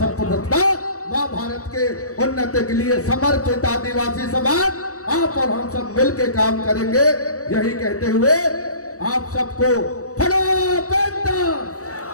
माँ भारत के उन्नति के लिए समर्पित आदिवासी समाज आप और हम सब मिलकर काम करेंगे। यही कहते हुए आप सबको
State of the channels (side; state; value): right; late; 0.65 ms